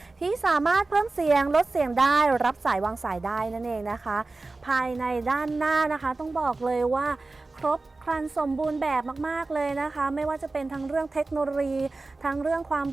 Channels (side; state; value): left; quieter; 3.4 dB